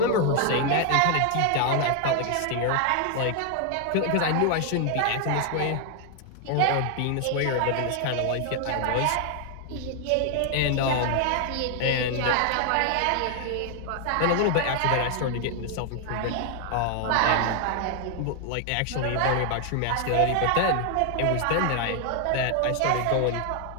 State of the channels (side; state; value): both; different; correlation 0.00